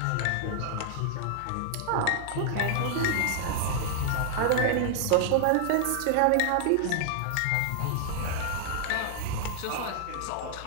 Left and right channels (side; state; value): both; different; correlation -0.01